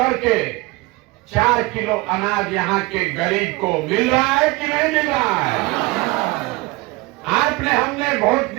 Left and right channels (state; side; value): quieter; left; 23.1 dB